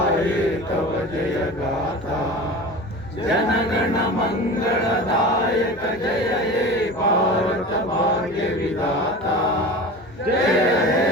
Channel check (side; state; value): both; normal; correlation 0.33